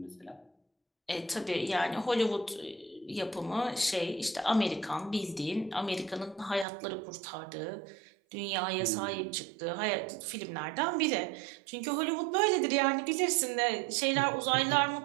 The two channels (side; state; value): left; drops out; at 6.7 s